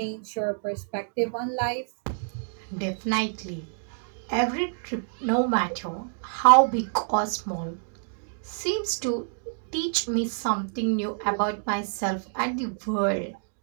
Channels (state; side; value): silent; left; digital silence